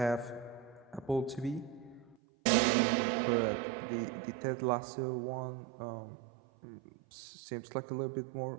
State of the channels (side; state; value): left; drops out; at 2.1 s